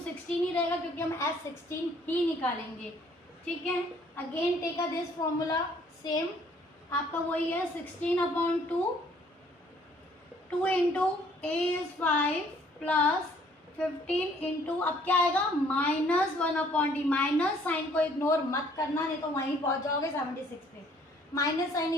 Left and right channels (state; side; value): normal; both; correlation 0.61